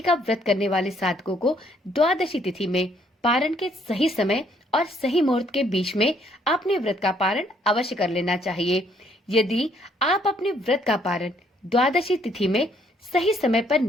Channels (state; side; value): normal; both; correlation 0.67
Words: का व्रत करने वाले साधकों को द्वादशी तिथि में पारण के सही समय और सही मुहूर्त के बीच में अपने व्रत का पारण अवश्य कर लेना चाहिए। यदि आप अपने व्रत का पारण द्वादशी तिथि में सही समय पर